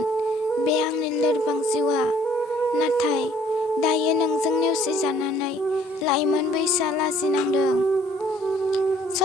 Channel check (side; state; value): both; normal; correlation 0.59